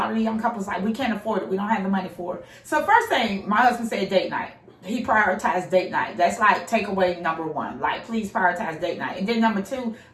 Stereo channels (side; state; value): both; identical; correlation 1.00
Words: of the young couples we can't afford it. We don't have the money for it. So first thing, my husband said date night. He prioritized date night. That's takeaway number 1. Please prioritize date night. And then number 2,